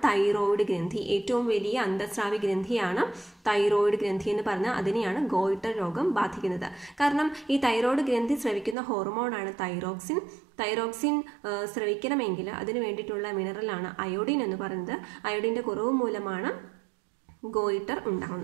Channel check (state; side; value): drops out; left; at 8.8 s